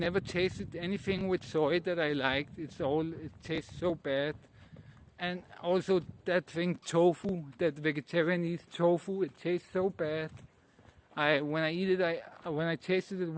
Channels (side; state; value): both; identical; correlation 1.00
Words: tasted anything with soy that I liked. It tastes so bad. And also that thing tofu, that vegetarian eats tofu, it tastes so bad. When I tasted it